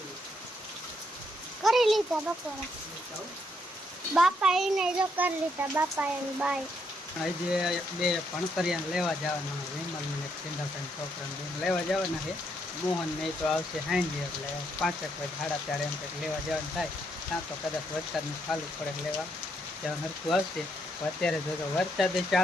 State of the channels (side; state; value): both; normal; correlation 0.75